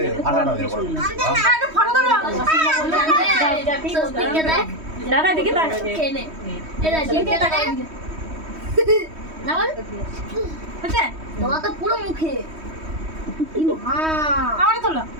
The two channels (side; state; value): left; late; 3.1 ms